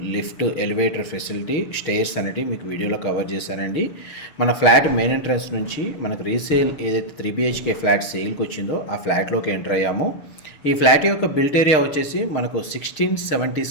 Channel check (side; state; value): right; late; 6.5 ms